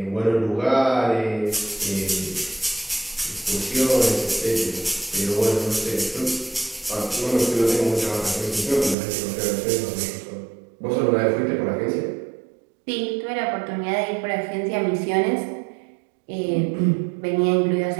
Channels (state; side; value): drops out; left; at 9.0 s